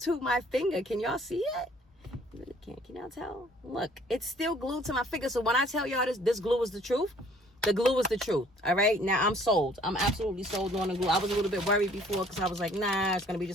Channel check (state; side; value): normal; both; correlation 0.57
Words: to my finger. Can y'all see it? You really can't. Can y'all tell? Look, it's still glued to my finger. So when I tell y'all this glue is the truth, the glue is the truth. All right? Now I'm sold. I'm absolutely sold on the glue. I was a little bit worried before because I was like, nah, it's going to be